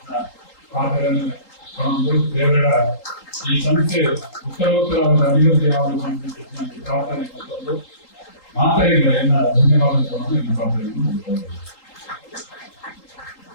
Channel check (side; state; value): right; late; 3.8 ms